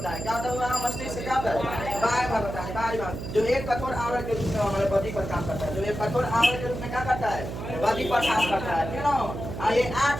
है, क्या होता होगा मस्तिष्क क्या होता है बाहर भाग होता है, बाहरी भाग जो एक कठोर आवरण के रूप में हमारे बॉडी पर काम करता है, जो एक कठोर आवरण के रूप में क्या करता है बॉडी पर काम करता है, क्यों ये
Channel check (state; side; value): noise; right; hum, 7 dB below the sound